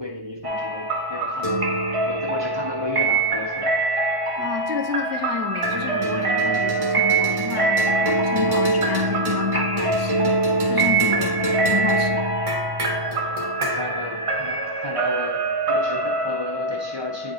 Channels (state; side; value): late; left; 1.1 ms